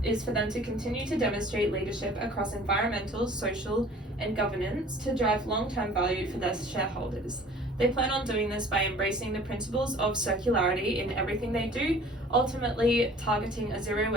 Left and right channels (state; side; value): normal; both; correlation 0.49